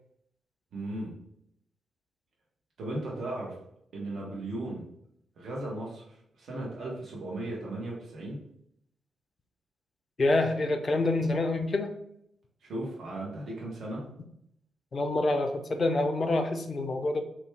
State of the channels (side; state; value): both; normal; correlation 0.85